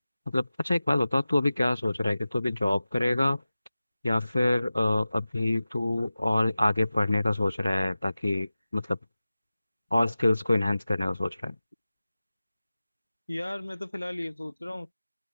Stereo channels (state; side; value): inverted; both; correlation -0.96